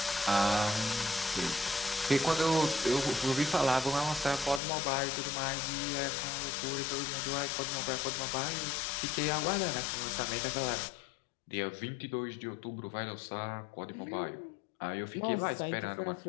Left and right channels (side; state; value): right; drops out; at 4.6 s